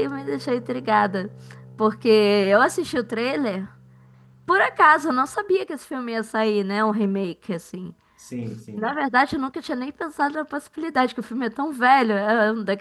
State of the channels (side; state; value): both; identical; correlation 1.00